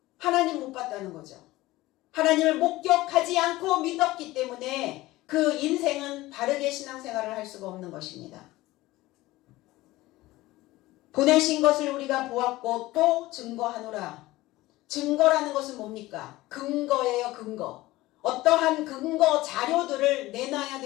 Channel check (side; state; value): right; quieter; 18.3 dB